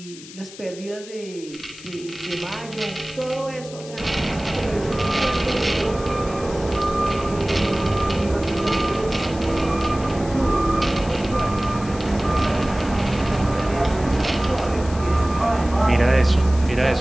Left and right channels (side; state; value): left; noise; hiss, 17 dB below the sound